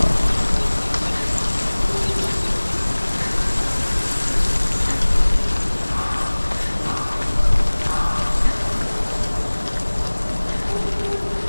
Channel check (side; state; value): both; inverted; correlation -1.00